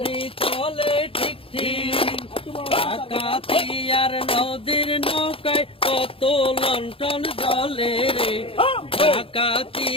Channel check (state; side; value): late; right; 0.27 ms